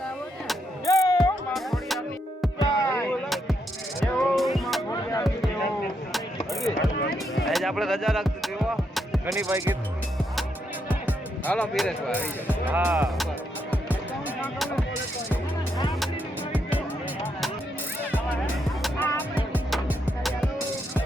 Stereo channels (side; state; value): both; normal; correlation 0.79